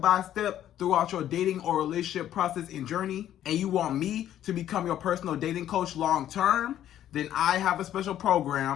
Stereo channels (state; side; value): quieter; right; 11.6 dB